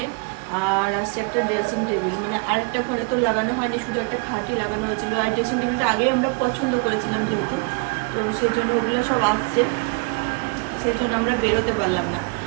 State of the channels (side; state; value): left; quieter; 31.3 dB